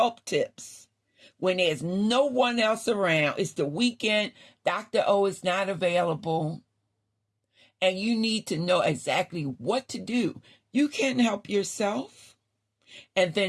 tips. When there's no one else around, it's the weekend, Dr. O is not available, and you need to know exactly what to do. You can help yourself and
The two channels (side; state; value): both; identical; correlation 1.00